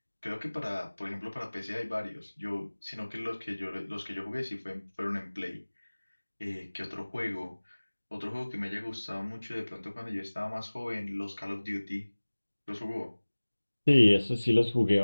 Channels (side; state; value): both; inverted; correlation -1.00